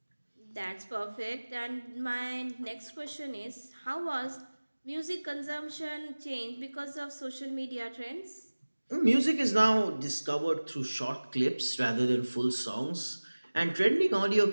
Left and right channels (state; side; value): inverted; both; correlation -1.00